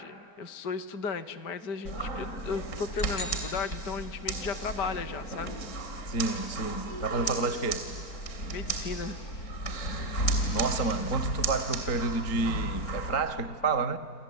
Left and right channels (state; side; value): late; right; 4.4 ms